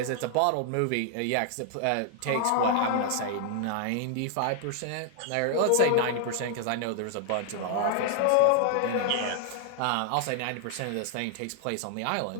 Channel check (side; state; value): both; different; correlation 0.00